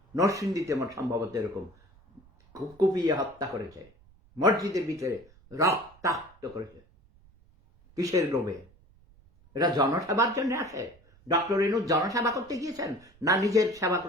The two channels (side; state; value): right; noise; rumble, 28 dB below the sound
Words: নরসিংদীতে আমার সম্ভবত এরকম কুপিয়ে হত্যা করেছে, মসজিদের ভিতরে রক্তাক্ত করেছে। কিসের লোভে? এটা জনসেবার জন্য আসে? ডক্টর ইনু জনসেবা করতে গিয়েছেন না নিজের সেবা